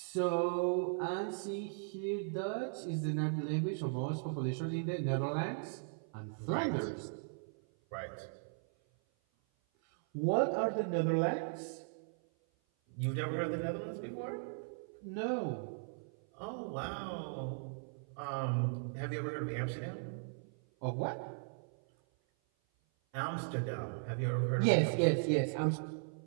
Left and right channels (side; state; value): left; silent; 53 dB below the other